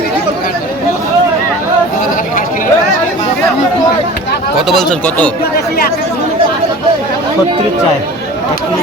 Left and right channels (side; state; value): both; normal; correlation 0.40